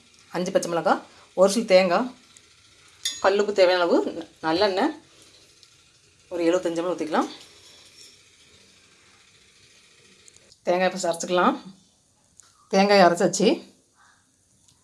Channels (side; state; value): both; identical; correlation 1.00